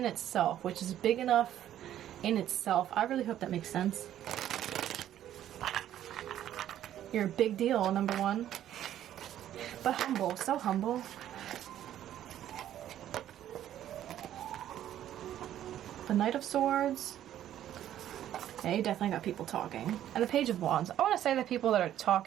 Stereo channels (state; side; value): quieter; left; 11.6 dB